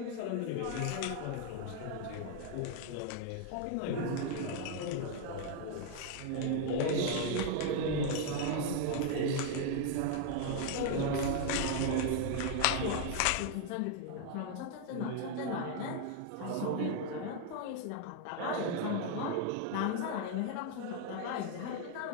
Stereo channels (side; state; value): both; different; correlation 0.00